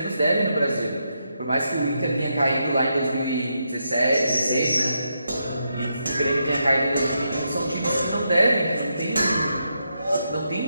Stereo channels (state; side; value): inverted; both; correlation -0.82